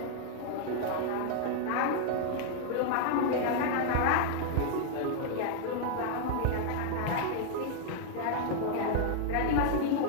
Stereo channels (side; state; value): both; different; correlation 0.00